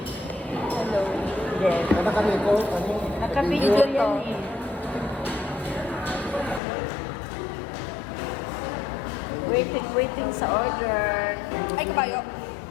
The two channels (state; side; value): drops out; right; at 6.6 s